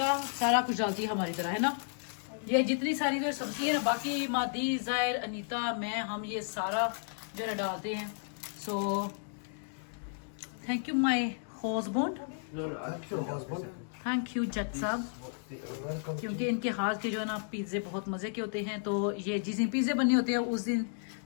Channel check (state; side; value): silent; right; digital silence